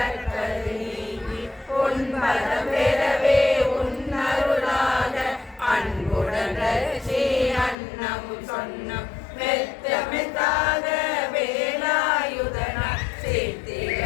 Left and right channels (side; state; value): right; drops out; at 7.8 s